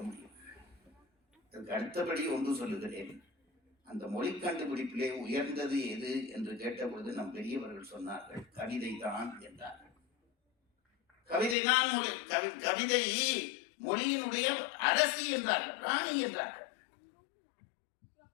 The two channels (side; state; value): right; drops out; at 11.6 s